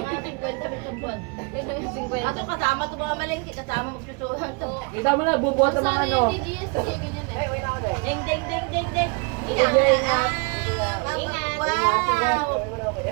50 bitong buwan. Yung 50. Ato kasama ko mga malingki, kasama magsusuhan to. Kita mo na, bubuhat ng mga ano. Sana yung GSG, ganyan eh. Ding, ding, ding, ding, ding. Ingat. Ingat. Wow!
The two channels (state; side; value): quieter; left; 31.2 dB